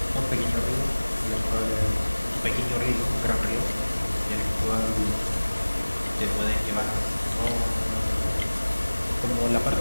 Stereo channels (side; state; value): both; inverted; correlation -1.00